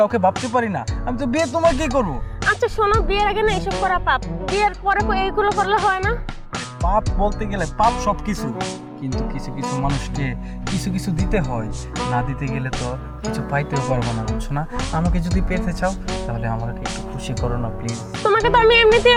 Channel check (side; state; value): both; identical; correlation 1.00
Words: ভাবতে পারি না। আমি তো বিয়ে তোমাকেই করবো। আচ্ছা শোনো, বিয়ের আগে না এসব করা পাপ, বিয়ের পরে এইগুলো করলে হয় না। পাপ বলতে গেলে পাপ সব কিছু, কিন্তু কিছু কিছু মানুষকে কিছু কিছু দিতে হয়, না দিতে গেলে তো কিছু পাইতেও পারবো না, বুঝছো না? আমাকে যদি পেতে চাও তাহলে আমাকে একটু খুশি করো না প্লিজ। তোমাকে তো আমি এমনিতেই